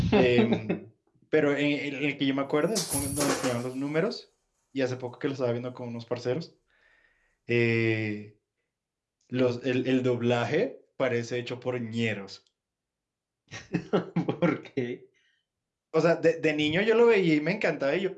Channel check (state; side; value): identical; both; correlation 1.00